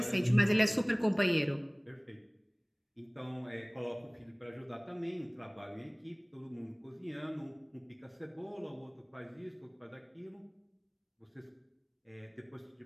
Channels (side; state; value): both; identical; correlation 1.00